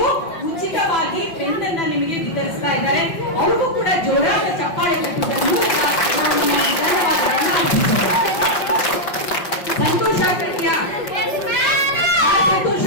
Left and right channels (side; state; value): right; late; 5.5 ms